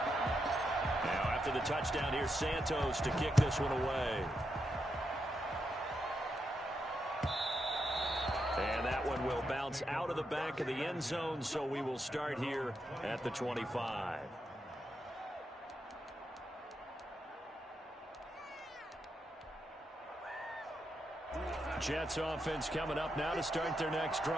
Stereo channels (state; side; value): normal; both; correlation 0.83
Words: Now after the touchdown, here's Santos to kick this one away. And that one will bounce out of the back of the end zone, so we will start here at the 25. Jets offense coming up now to start their next